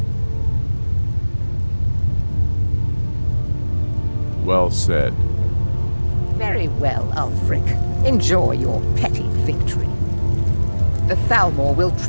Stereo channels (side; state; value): both; inverted; correlation -1.00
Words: Well said. Very well, Ulfric. Enjoy your petty victory. The Thalmor will